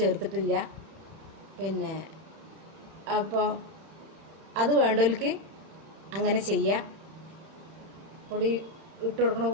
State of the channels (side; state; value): left; late; 31 ms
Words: പിന്നെ അപ്പോൾ അത് വേണ്ടവർക്ക് അങ്ങനെ ചെയ്യാം. പൊടി ഇട്ട് കൊടുക്കണ